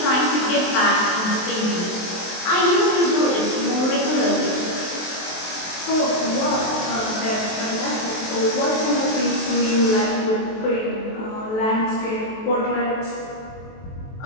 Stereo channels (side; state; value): right; late; 23 ms